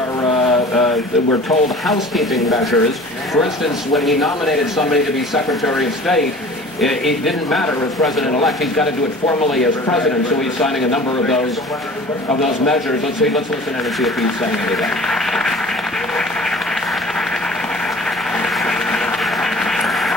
we're told, housekeeping measures. For instance, when he nominated somebody to be Secretary of State, it didn't matter as President-elect. He's got to do it formally as President, so he's signing a number of those measures. Let's listen in and see if he's saying anything.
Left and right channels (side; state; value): both; normal; correlation 0.44